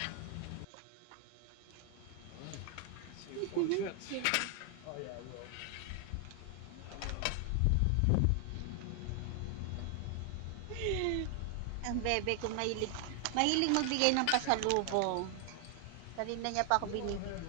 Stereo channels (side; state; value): both; different; correlation 0.00